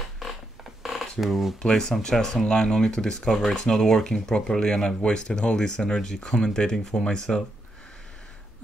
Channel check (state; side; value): normal; both; correlation 0.82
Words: play some chess online only to discover it's not working properly, and I've wasted all this energy commentating for myself.